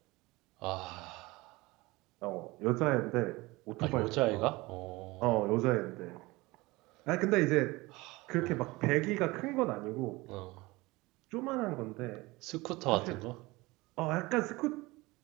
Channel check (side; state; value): left; quieter; 21.9 dB